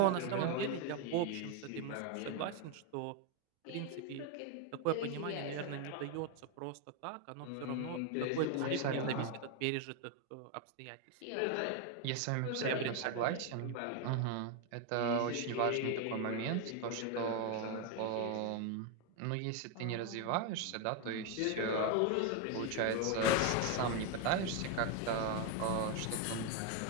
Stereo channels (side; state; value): both; different; correlation 0.01